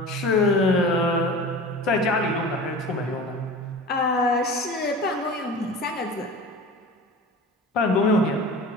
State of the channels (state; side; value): normal; both; correlation 0.36